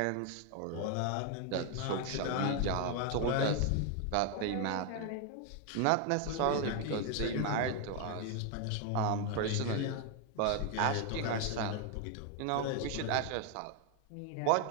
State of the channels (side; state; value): both; different; correlation 0.01